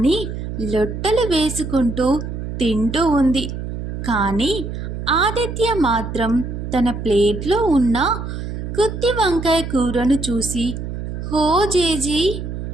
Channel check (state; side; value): noise; right; hum, 6 dB below the sound